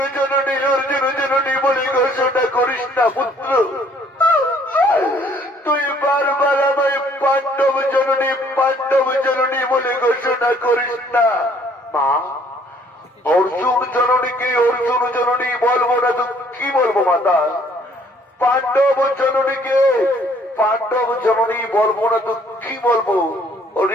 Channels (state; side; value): normal; both; correlation 0.61